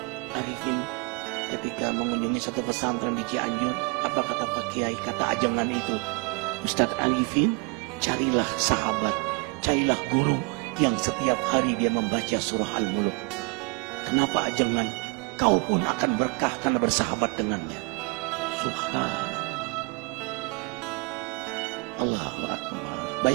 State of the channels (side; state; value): left; quieter; 31.4 dB